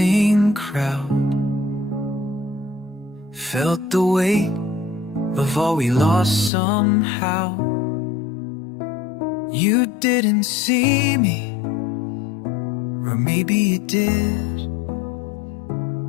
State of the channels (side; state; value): right; drops out; at 6.5 s